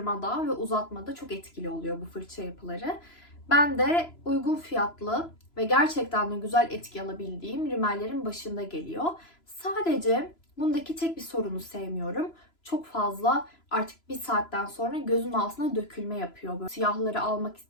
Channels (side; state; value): right; late; 3.0 ms